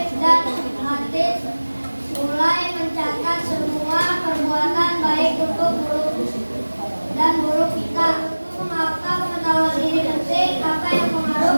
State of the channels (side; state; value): both; inverted; correlation -1.00